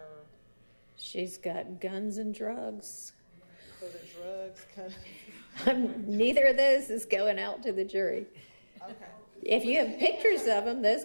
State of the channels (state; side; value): inverted; both; correlation -1.00